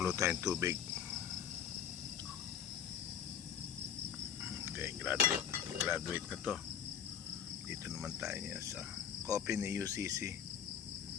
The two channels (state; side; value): quieter; right; 8.3 dB